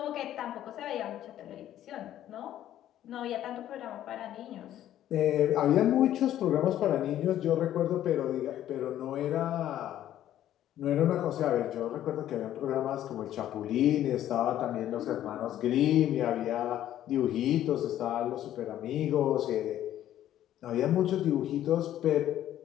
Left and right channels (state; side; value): quieter; right; 12.1 dB